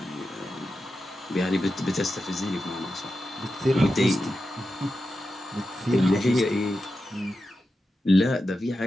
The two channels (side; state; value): both; normal; correlation 0.90